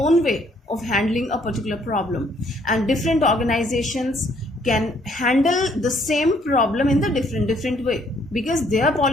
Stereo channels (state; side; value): normal; both; correlation 0.65